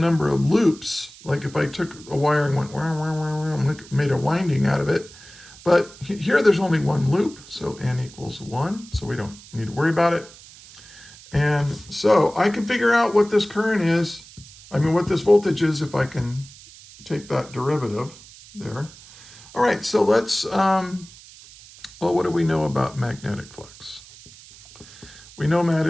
of loops. Like if I took a wire and went, made a winding out of it. But here there's only one loop, so N equals 1, so we don't need to worry about it. And so I can figure out what this current is, what this voltage is, if I can take that derivative there. All right, so let's Well, what do we know about magnetic flux? We know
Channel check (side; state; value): right; noise; hiss, 20 dB below the sound